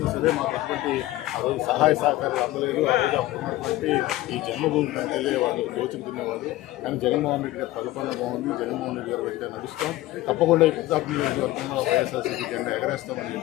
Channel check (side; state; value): right; quieter; 16.8 dB